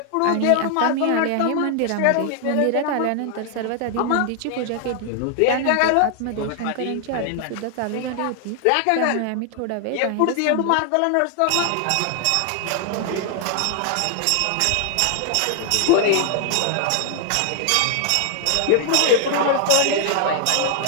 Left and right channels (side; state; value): both; different; correlation 0.00